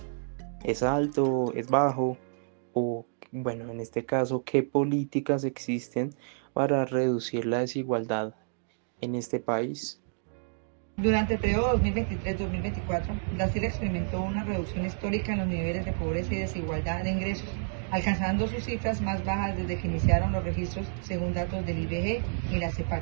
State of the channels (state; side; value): silent; left; digital silence